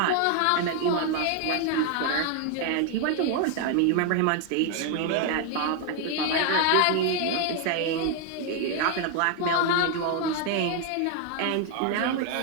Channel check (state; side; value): different; both; correlation 0.01